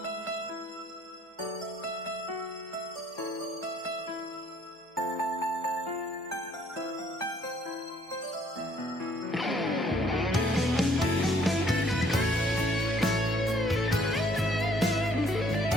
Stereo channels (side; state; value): both; normal; correlation 0.62